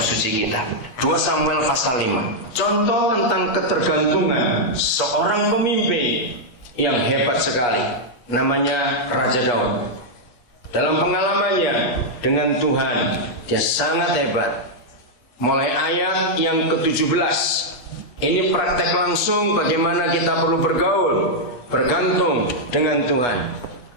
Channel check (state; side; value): late; right; 8.3 ms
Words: suci kita. 2 Samuel pasal 5. Contoh tentang ketergantungan seorang pemimpin yang hebat sekali. Namanya Raja Daud. Dalam pengalamannya dengan Tuhan, dia sangat hebat. Mulai ayat yang ke-17. Ini praktek langsung bagaimana kita perlu bergaul, bergantung dengan Tuhan.